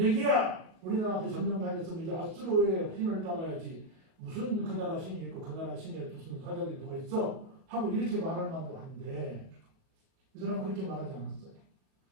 우리나라한테 점령당했으면 이제 아수르의 신을 따라야지. 무슨 그 나라 신이 있고 그 나라 신에 무슨 사자들이 누가 있어? 하고 이렇게 말할 만도 한데 이 사람은 그렇게 말하지 않았어요.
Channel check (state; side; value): late; left; 38 ms